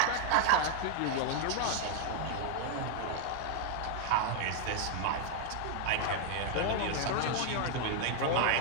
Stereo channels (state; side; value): different; both; correlation 0.00